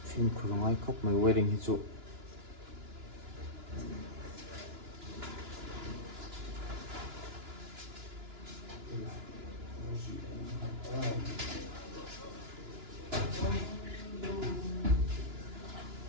phim khung ai khóc mấy wedding hi chu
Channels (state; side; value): late; left; 2.9 ms